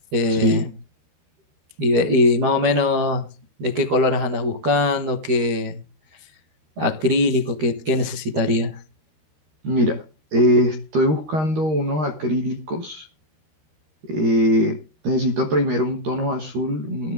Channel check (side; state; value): left; late; 13 ms